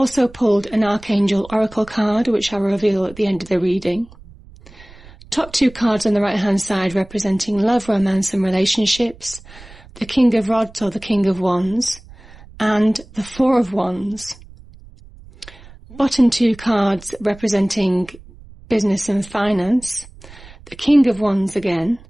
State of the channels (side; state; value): right; noise; rumble, 21 dB below the sound